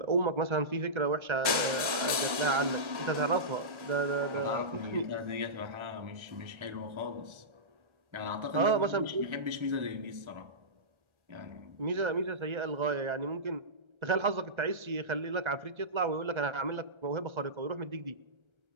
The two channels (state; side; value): late; left; 1.3 ms